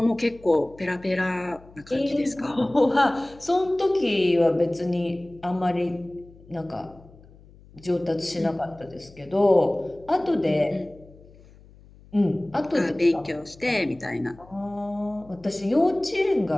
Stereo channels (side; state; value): left; noise; hum, 24 dB below the sound